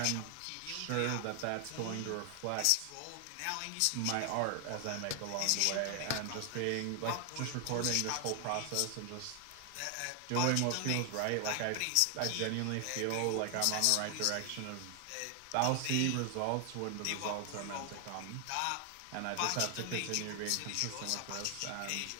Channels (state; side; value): different; both; correlation 0.00